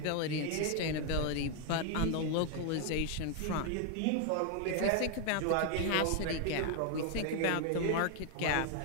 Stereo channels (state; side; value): different; both; correlation 0.00